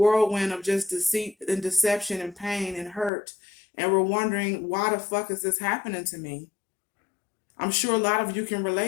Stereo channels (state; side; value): drops out; right; at 3.1 s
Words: of just deceit and deception and pain and hurt. And were wondering, why the fuck is this happening to me? I'm sure a lot of you can